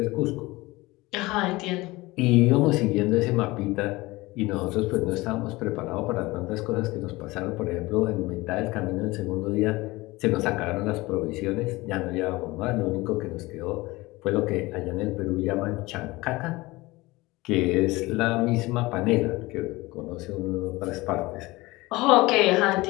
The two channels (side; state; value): right; quieter; 21.0 dB